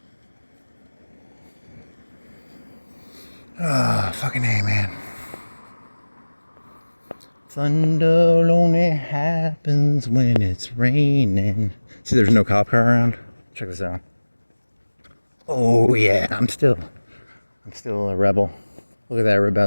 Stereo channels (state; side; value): inverted; both; correlation -1.00